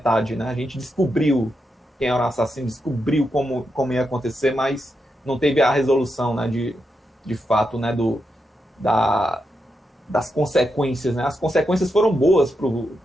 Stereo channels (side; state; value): both; normal; correlation 0.85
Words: né? A gente descobriu quem era o assassino, descobriu como ia acontecer, mas não teve a resolução, né, de fato, né, das consequências, né? As consequências foram boas